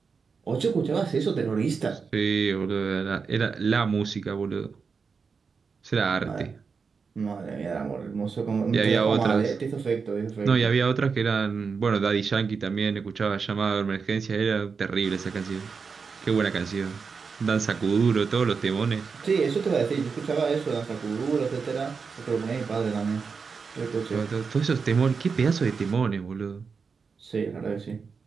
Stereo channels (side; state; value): left; quieter; 5.3 dB